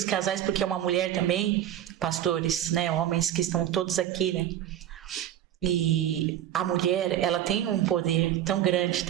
casais, porque é uma mulher também, pastores, né, homens que estão todos aqui, né? E a mulher, ela tem um poder tão grande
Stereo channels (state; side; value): quieter; left; 11.5 dB